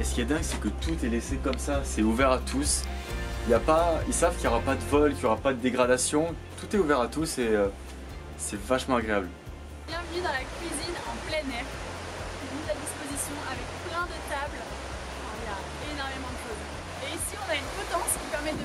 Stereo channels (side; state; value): both; identical; correlation 1.00